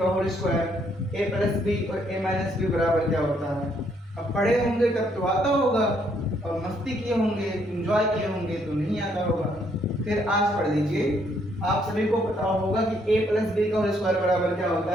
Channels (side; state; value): both; normal; correlation 0.70